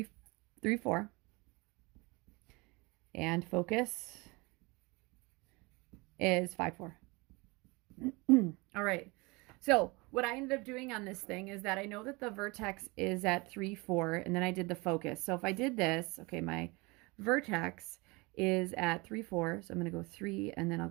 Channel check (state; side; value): quieter; left; 25.8 dB